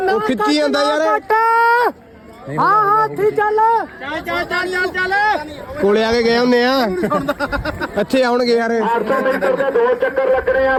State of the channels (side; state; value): both; identical; correlation 1.00